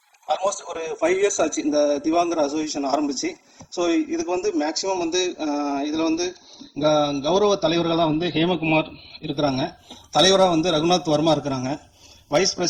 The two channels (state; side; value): identical; both; correlation 1.00